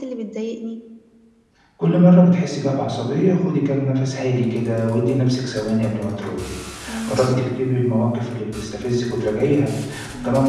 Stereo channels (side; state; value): both; identical; correlation 1.00